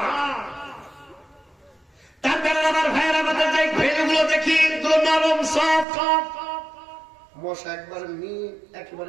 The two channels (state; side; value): drops out; left; at 5.9 s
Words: তার কারণে আমার ভাইয়ের আমাদের যে ভেড়গুলো দেখি, এগুলো নরম সফট। মশা